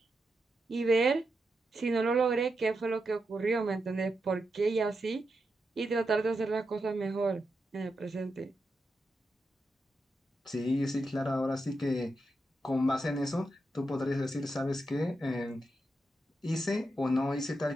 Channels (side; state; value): both; normal; correlation 0.86